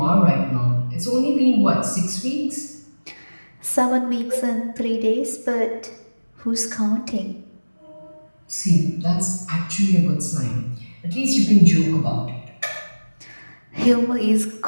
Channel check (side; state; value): both; inverted; correlation -1.00